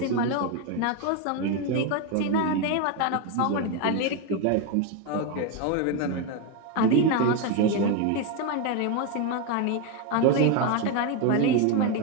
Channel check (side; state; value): both; different; correlation 0.02